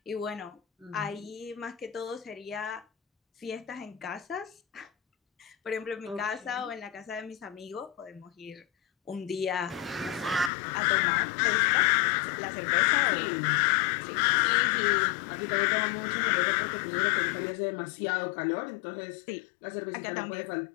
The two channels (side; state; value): right; drops out; at 10.5 s